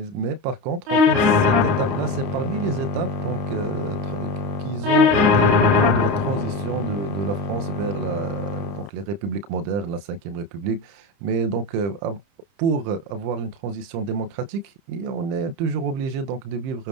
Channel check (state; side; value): late; left; 30 ms